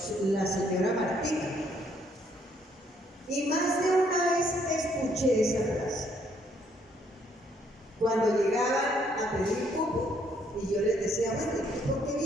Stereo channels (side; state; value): both; normal; correlation 0.68